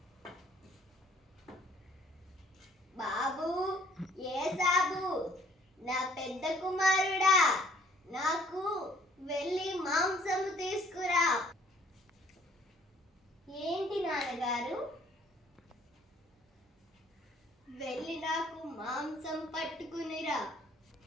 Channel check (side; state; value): both; normal; correlation 0.60